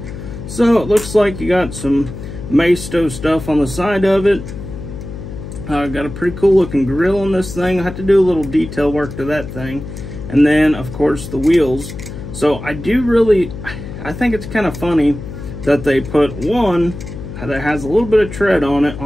So, it looks like you got some maisto stuff on the side of it. Got a pretty cool looking grill on this thing. I have to do a little detail work to that thing. And then, of course, the wheels. So I think it's kind of funny that they put one that has a little bit of tread on it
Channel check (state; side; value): noise; left; hum, 10 dB below the sound